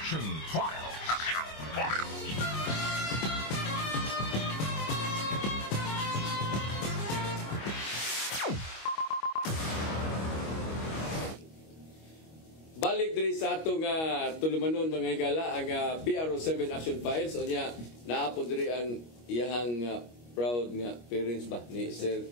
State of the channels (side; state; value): right; late; 25 ms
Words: Files. Balik diri sa atong tulumanon mga higala ang PRO7 Action Files o niya naapod diri ang iyang proud nga parents ba ni Sir